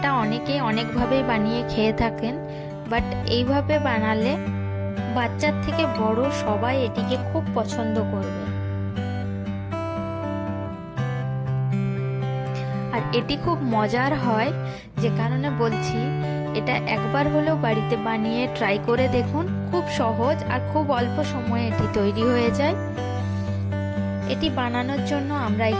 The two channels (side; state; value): both; identical; correlation 1.00